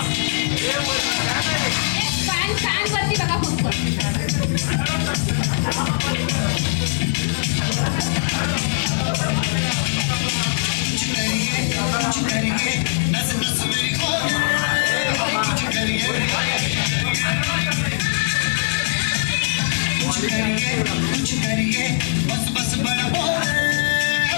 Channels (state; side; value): silent; right; digital silence